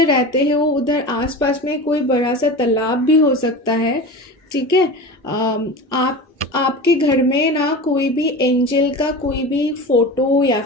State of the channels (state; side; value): normal; both; correlation 0.30